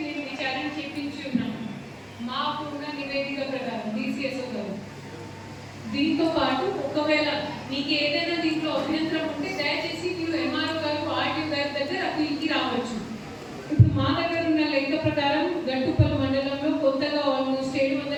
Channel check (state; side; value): identical; both; correlation 1.00